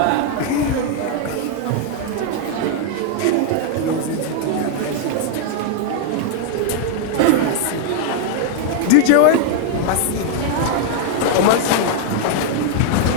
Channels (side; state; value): both; different; correlation 0.00